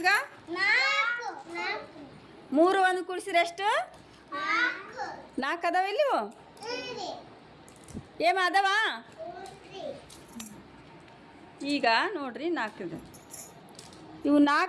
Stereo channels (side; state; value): both; identical; correlation 1.00